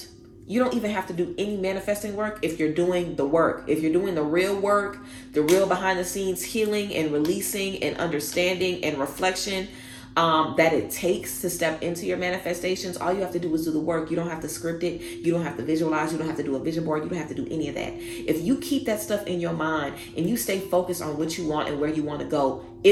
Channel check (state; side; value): identical; both; correlation 1.00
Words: you don't even have to do any manifesting work if you're doing the work. If you're doing the real work, the real behind the scenes healing and releasing and understanding and reflection that it takes to step into your manifestations, all you have to do is do the work. You don't have to script it. You don't have to visualize. You don't have to do a vision board. You don't have to do any of that. If you keep that stuff in your mind and you stay focused on what you want and where you want to go,